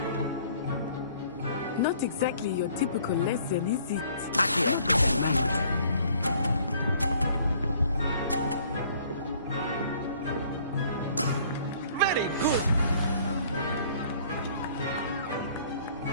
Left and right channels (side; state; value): both; inverted; correlation -0.57